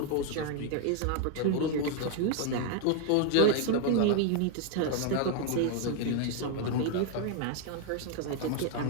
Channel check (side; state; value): both; different; correlation 0.01